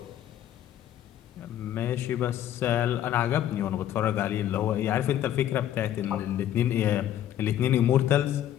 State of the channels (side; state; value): right; quieter; 11.5 dB